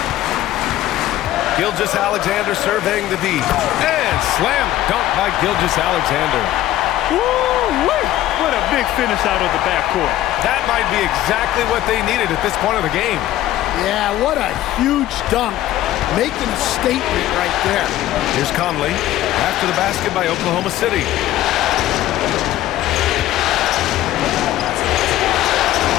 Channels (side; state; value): right; quieter; 14.0 dB